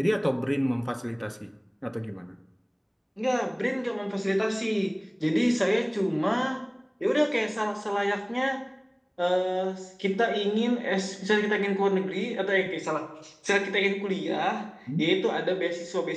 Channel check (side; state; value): both; identical; correlation 1.00